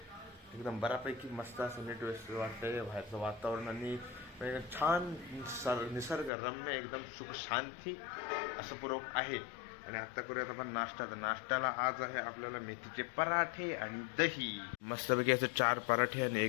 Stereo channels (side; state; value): right; drops out; at 6.3 s